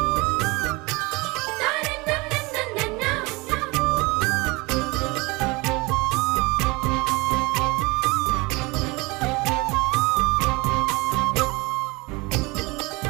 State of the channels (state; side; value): quieter; left; 24.9 dB